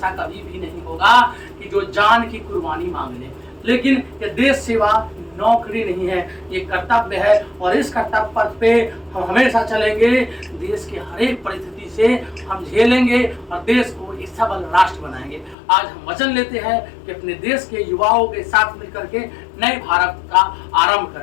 कभी भी नहीं होगा कि जो जान की कुर्बानी मांग ले। लेकिन ये देश सेवा नौकरी नहीं है, ये कर्तव्य है, और इस कर्तव्य पथ पे हम हमेशा चलेंगे। देश के हर एक परिस्थिति से हम झेलेंगे और देश को एक सबल राष्ट्र बनाएंगे। आज हम वचन लेते हैं कि अपने देश के युवाओं के साथ मिलकर के नए भारत का आरंभ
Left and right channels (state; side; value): drops out; right; at 15.6 s